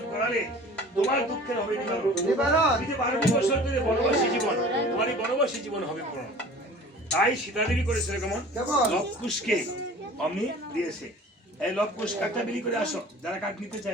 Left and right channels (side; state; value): both; normal; correlation 0.44